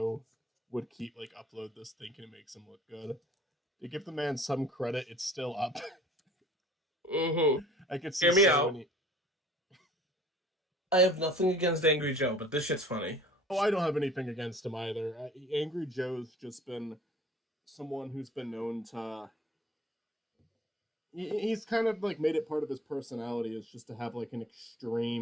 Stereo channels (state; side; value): normal; both; correlation 0.49